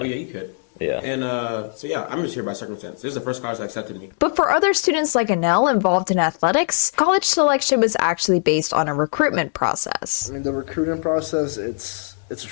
you could. Yeah. And so, yeah, I'm just here by circumstance. This is the first college that accepted me. But for other students like Anel involved in athletics, college selection was actually based on a recruitment process. I mean, the recruiting process, it's a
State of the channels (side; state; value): right; silent; digital silence